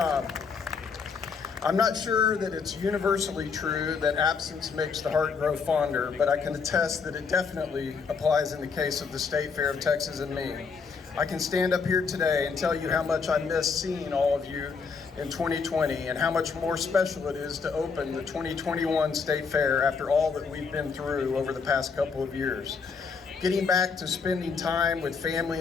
I'm not sure that it's universally true that absence makes the heart grow fonder, but I can attest that it definitely applies in the case of the State Fair of Texas and me. I can stand up here today and tell you how much I miss seeing all of you in 2020 and how much more special it is to open the 2021 State Fair after all that we've been through over the past couple of years. Getting back to spending time with family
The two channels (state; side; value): quieter; right; 5.4 dB